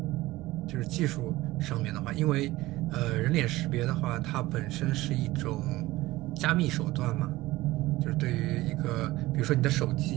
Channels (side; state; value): left; quieter; 18.2 dB